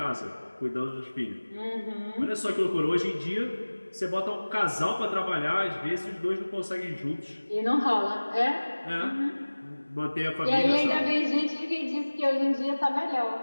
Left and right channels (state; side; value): inverted; both; correlation -1.00